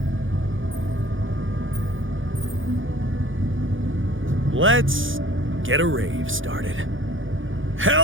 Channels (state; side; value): late; left; 0.58 ms